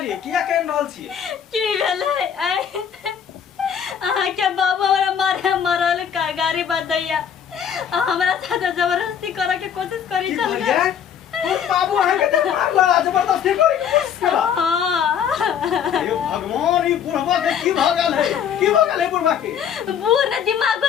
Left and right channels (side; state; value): right; quieter; 8.3 dB